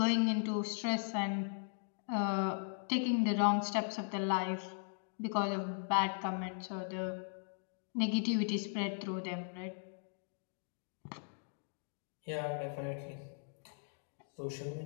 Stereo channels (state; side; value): silent; right; digital silence